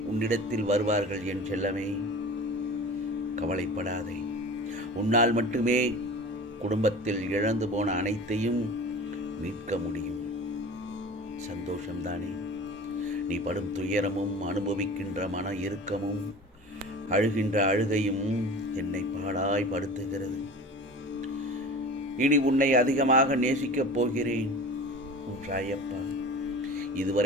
உன்னிடத்தில் வருவார்கள் என் செல்லமே, கவலைப்படாதே. உன்னால் மட்டுமே குடும்பத்தில் இழந்து போன அனைத்தையும் மீட்க முடியும். சந்தோஷம்தானே? நீ படும் துயரமும் அனுபவிக்கின்ற மன இறுக்கமும் அழுகின்ற அழுகையும் என்னை பாடாய் படுத்துகிறது. இனி உன்னை அதிகமாக நேசிக்கப் போகிறேன் உன் சாயப்பா.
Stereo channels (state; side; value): normal; both; correlation 0.37